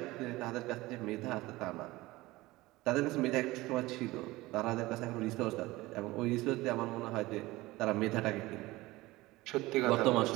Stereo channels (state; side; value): quieter; left; 19.6 dB